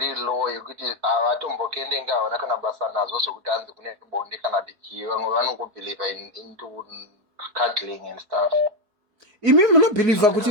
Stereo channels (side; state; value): left; late; 4.6 ms